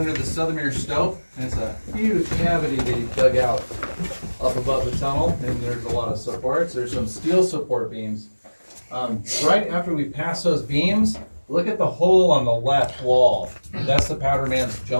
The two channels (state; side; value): inverted; both; correlation -1.00